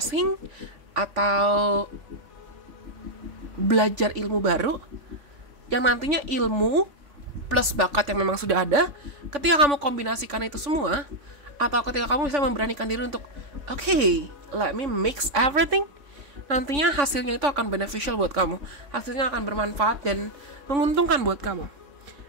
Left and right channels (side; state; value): left; late; 3.5 ms